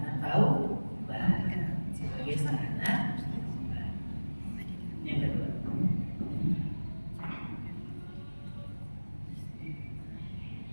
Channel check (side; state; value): both; inverted; correlation -1.00